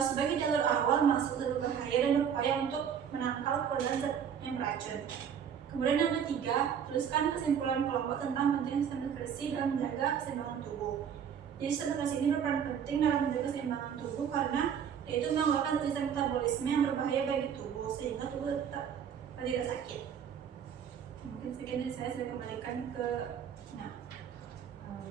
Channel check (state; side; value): quieter; left; 8.0 dB